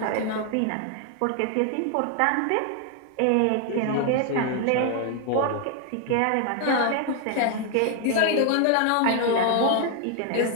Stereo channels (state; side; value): different; both; correlation 0.00